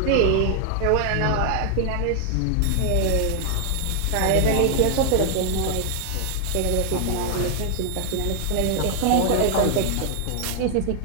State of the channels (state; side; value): different; both; correlation 0.00